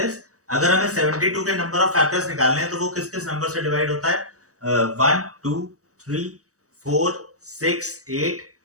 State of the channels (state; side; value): late; left; 0.66 ms